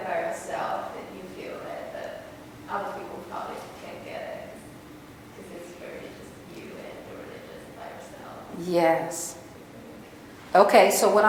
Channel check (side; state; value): both; identical; correlation 1.00